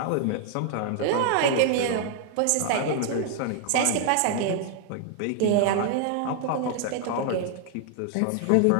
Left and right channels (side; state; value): both; different; correlation 0.00